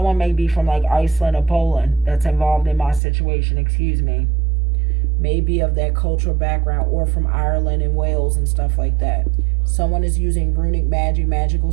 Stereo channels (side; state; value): left; drops out; at 3.0 s